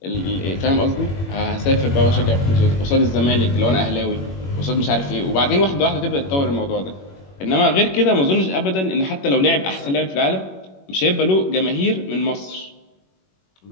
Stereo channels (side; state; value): right; late; 21 ms